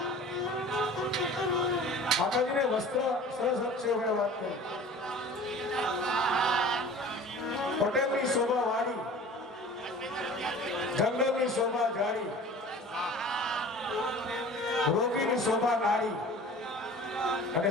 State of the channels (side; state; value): both; normal; correlation 0.42